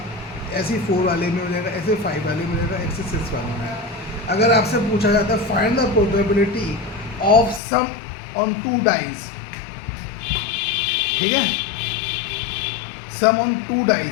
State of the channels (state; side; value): drops out; right; at 7.6 s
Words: ऐसे ही 4 वाले में हो जाएगा, ऐसे 5 वाले में हो जाएगा, ऐसे 6 वाले में आएगा। अगर आपसे पूछा जाता है find the probability of sum on 2 dice, ठीक है, सम ऑन 2